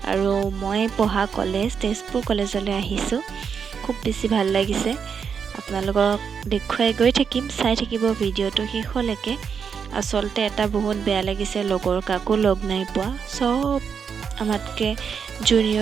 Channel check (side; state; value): left; quieter; 6.6 dB